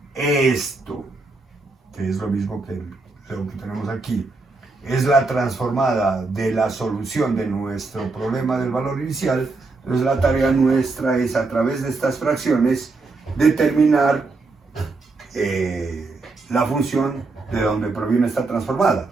esto, que es lo mismo que lo que tenemos aquí. Es la transformada de la solución de nuestro problema del valor inicial. Entonces la tarea nuestra es, a través de estas fracciones, determinar la función de donde proviene esta transformada,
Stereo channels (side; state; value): left; quieter; 3.6 dB